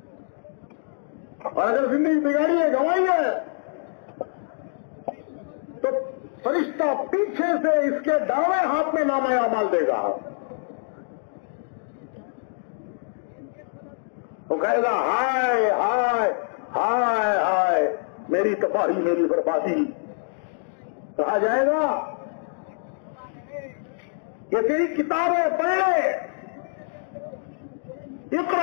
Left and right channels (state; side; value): silent; right; digital silence